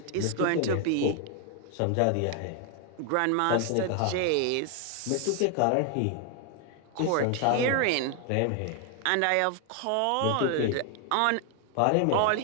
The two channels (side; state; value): both; different; correlation 0.01